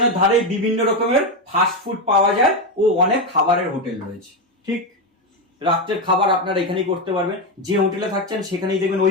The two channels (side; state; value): both; normal; correlation 0.10